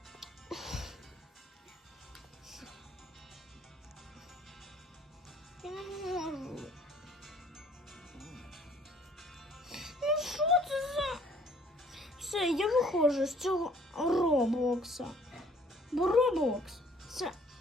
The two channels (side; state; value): both; normal; correlation 0.58